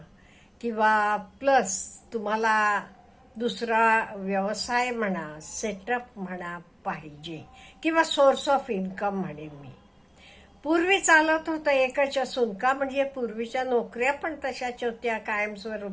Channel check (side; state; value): both; identical; correlation 1.00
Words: किंवा प्लस तुम्हाला दुसरा व्यवसाय म्हणा, सेटअप म्हणा पाहिजे किंवा सोर्स ऑफ इन्कम म्हणेन मी. पूर्वी चालत होतं एकच असून का, म्हणजे पूर्वीच्या नोकऱ्या पण तशाच होत्या